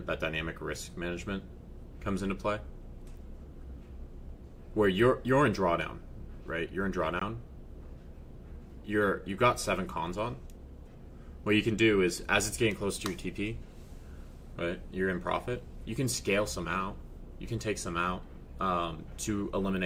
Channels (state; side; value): identical; both; correlation 1.00